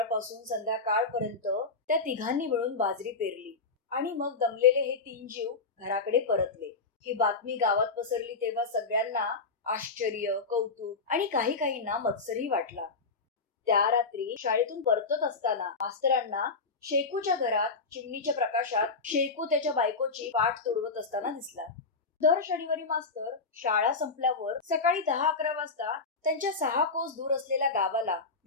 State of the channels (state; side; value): quieter; right; 4.2 dB